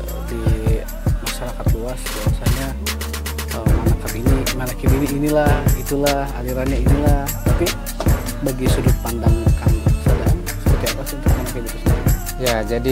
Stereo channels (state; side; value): identical; both; correlation 1.00